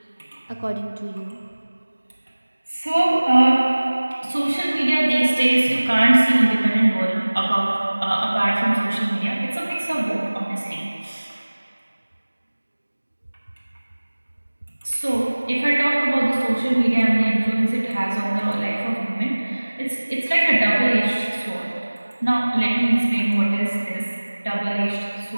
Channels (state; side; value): inverted; both; correlation -1.00